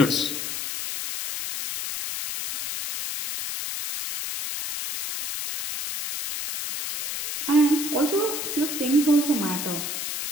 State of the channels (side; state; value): left; noise; hiss, 4 dB below the sound